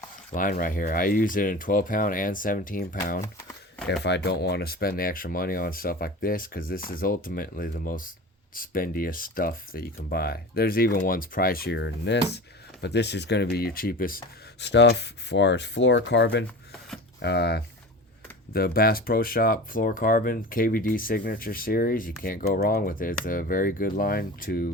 line right here. I use it in 12 pound and 17 pound if I don't want to spend the extra money on stuff like this, because this is ultimately the most spendiest stuff that you can buy. There's even ones pricier than this, but this is going to be your cheapest stuff as far as fluorocarbon. The Bass Pro Shop fluorocarbon KVD Signature Series, you can't go wrong with it. It's a very good line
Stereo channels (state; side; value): normal; both; correlation 0.33